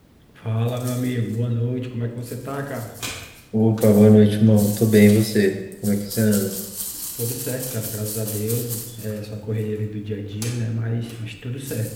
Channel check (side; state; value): both; identical; correlation 1.00